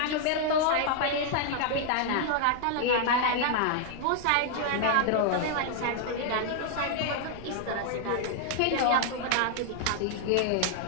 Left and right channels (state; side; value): different; both; correlation 0.00